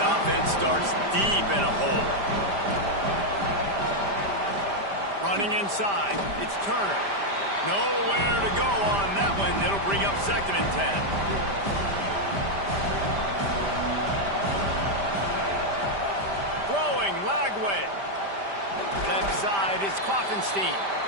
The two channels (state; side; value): late; left; 5.0 ms